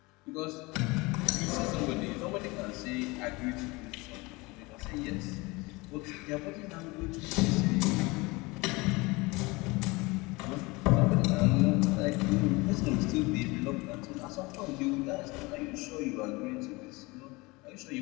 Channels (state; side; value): quieter; right; 24.3 dB